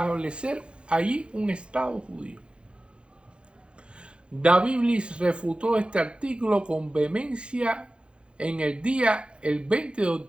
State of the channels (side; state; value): left; late; 0.057 ms